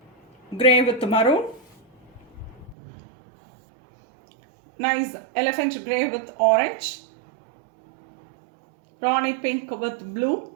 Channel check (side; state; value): left; drops out; at 2.8 s